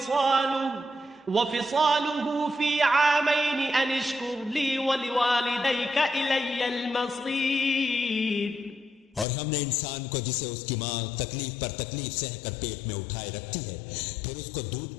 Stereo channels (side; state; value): right; drops out; at 9.2 s